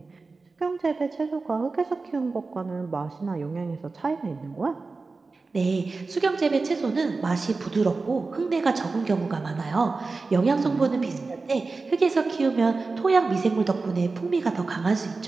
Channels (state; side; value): quieter; left; 3.9 dB